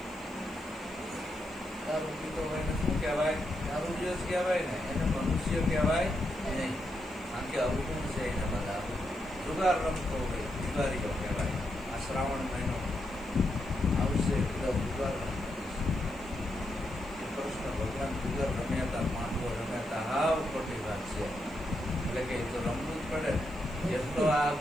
દારૂ પીતો હોય ને શું કહેવાય? દારૂડિયો જ કહેવાય ને, એને મનુષ્ય કહેવાય નહીં. કારણ કે અવગુણ છે એને બધા. જુગાર રમતો હોય જુગારીઓ કહેવાય. આ શ્રાવણ મહિનો આવશે બધા જુગાર રમતા. કૃષ્ણ ભગવાન જુગાર રમ્યા હતા, પાંડવો રમ્યા હતા. હાવ ખોટી વાત છે. એટલે કે એ તો રમવું જ પડે. જેટલો આ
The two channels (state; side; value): noise; left; hiss, 28 dB below the sound